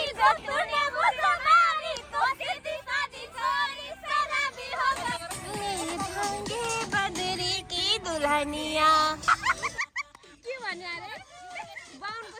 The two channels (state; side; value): identical; both; correlation 1.00